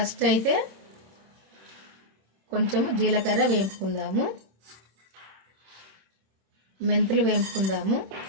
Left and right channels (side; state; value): left; late; 26 ms